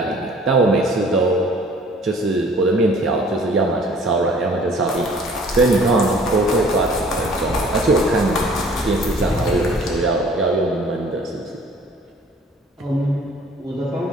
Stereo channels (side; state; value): both; normal; correlation 0.53